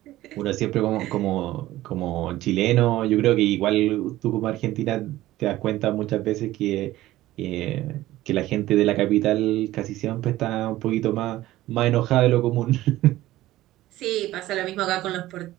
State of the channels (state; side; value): quieter; left; 15.9 dB